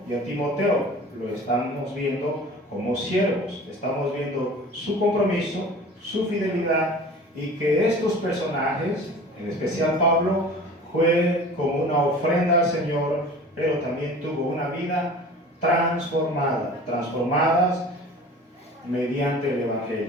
y a Timoteo, lo estamos viendo como siervos, estamos viendo su compromiso, su fidelidad, y que estos personajes, en especial Pablo, fue como una ofrenda al Señor, pero también tuvo una vida transformadas mediante el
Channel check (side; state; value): both; normal; correlation 0.41